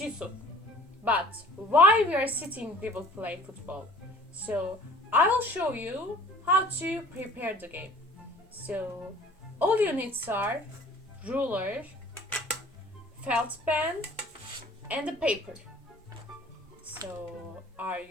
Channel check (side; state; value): both; normal; correlation 0.50